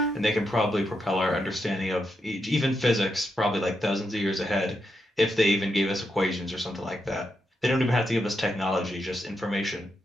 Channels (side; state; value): both; normal; correlation 0.83